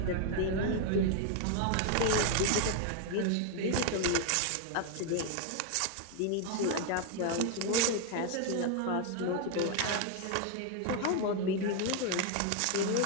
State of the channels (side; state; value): both; different; correlation 0.01